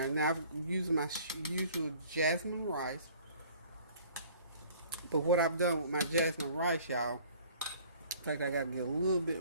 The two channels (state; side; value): inverted; both; correlation -0.52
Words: Now, I've used my usual jasmine rice. But what I've done with my jasmine rice, y'all, in fact, I got to get a little